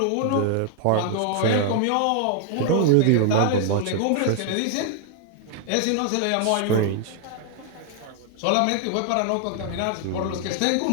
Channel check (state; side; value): different; both; correlation 0.00